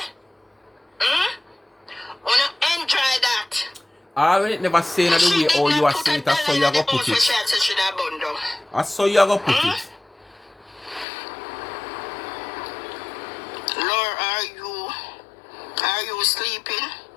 I want to enjoy that. I will never say that the way how you are saying it, that's how you are going to put it. That's how you are going to put it. Lord, are you sleeping?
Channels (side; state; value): right; drops out; at 11.1 s